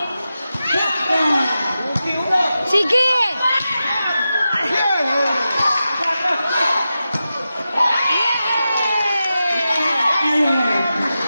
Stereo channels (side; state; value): both; inverted; correlation -0.91